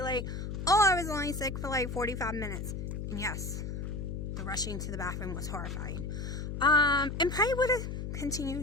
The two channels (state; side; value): noise; left; hum, 5 dB below the sound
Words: like, oh, I was only sick for like 45 minutes. And yes, the rushing to the bathroom was horrifying. And probably would have